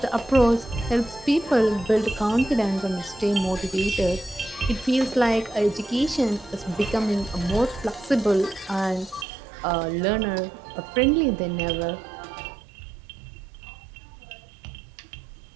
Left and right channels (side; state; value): left; drops out; at 9.2 s